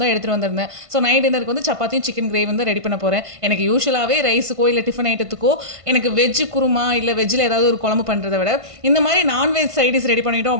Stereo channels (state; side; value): late; left; 1.5 ms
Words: தான் எடுத்துட்டு வந்திருந்தேன். ஸோ நைட் டின்னருக்கு வந்து சப்பாத்தியும் சிக்கன் கிரேவி வந்து ரெடி பண்ண போறேன். எனக்கு யூசுவலாவே ரைஸுக்கோ இல்ல டிஃபன் ஐட்டத்துக்கோ எனக்கு வெஜ் குருமா இல்ல வெஜ்ல ஏதாவது ஒரு குழம்பு பண்றத விட இந்த மாதிரி நான்வெஜ் சைட் டிஷ் ரெடி பண்ணிட்டோம்